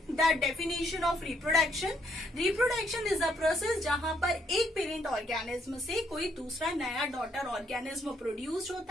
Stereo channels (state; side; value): normal; both; correlation 0.71